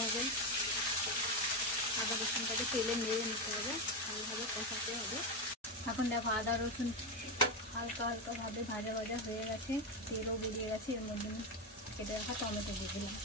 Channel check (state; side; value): normal; both; correlation 0.11